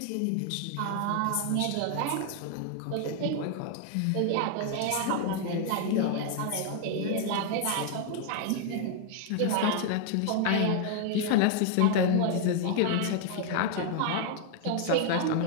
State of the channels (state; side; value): different; both; correlation 0.00